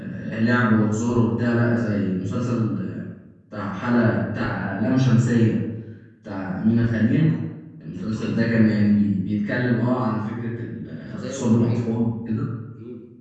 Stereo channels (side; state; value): both; identical; correlation 1.00